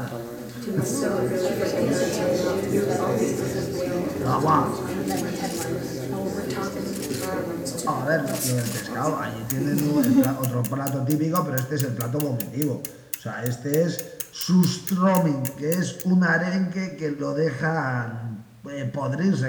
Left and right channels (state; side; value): identical; both; correlation 1.00